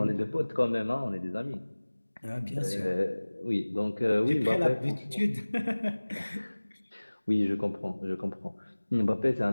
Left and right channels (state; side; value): inverted; both; correlation -1.00